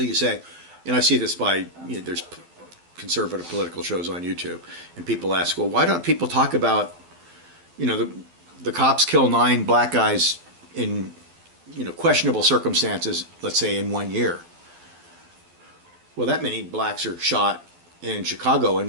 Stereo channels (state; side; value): late; left; 12 ms